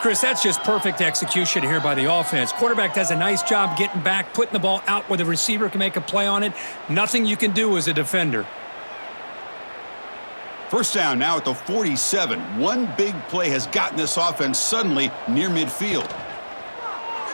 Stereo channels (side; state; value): both; inverted; correlation -1.00